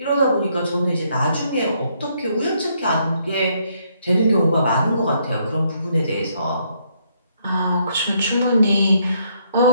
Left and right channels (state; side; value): inverted; both; correlation -0.72